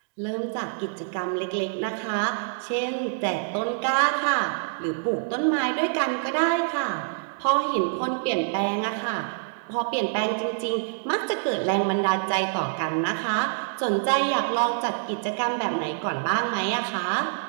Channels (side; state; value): left; silent; digital silence